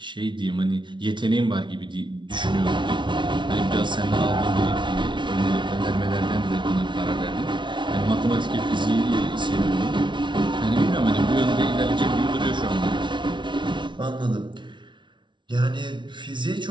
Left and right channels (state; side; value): late; left; 0.24 ms